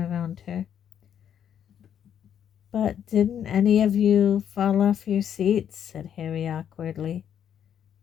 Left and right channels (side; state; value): right; quieter; 9.2 dB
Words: her. "But didn't any of you fall off your seats?" said Harry awkwardly.